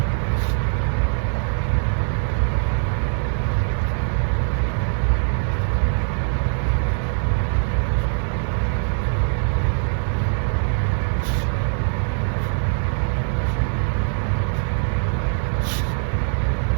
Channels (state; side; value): silent; left; digital silence